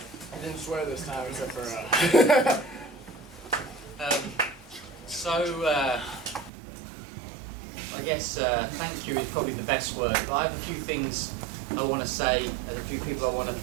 I didn't swear this time, except for I guess thank you is probably the best word, but I have a few things I want to say, and a few people I want to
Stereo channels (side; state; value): left; drops out; at 6.5 s